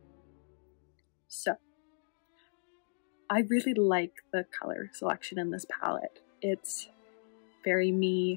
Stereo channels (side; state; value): right; silent; digital silence